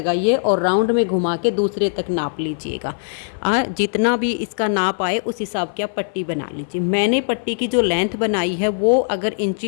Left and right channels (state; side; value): silent; right; 56 dB below the other